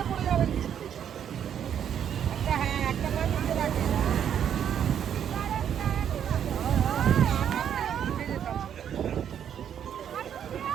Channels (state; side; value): quieter; left; 9.0 dB